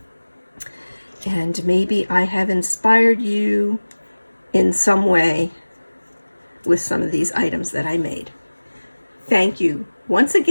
And maybe I have inspired you in some way with some of these items that I made. Thank you once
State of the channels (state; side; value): inverted; both; correlation -1.00